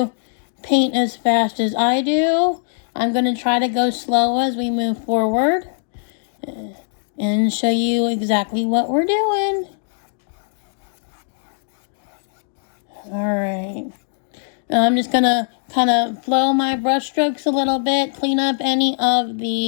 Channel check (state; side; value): silent; right; digital silence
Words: paint as fast as I do. I'm going to try to go slow as we move forward and show you exactly what we're doing. Alright. I'm just going to kind of flow my brush strokes a little bit, clean up any of